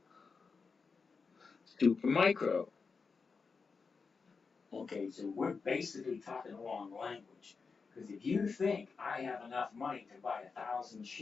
Supermicro. Okay, so we're basically talking the wrong language. Because if you think I have enough money to buy 1,000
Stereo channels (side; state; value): right; quieter; 4.9 dB